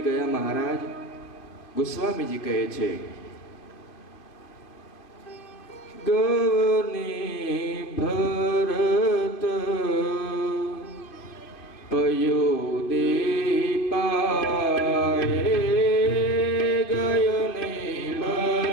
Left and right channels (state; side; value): late; right; 2.4 ms